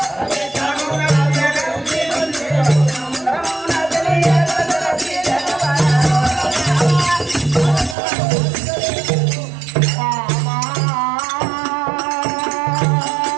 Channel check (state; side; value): drops out; left; at 8.0 s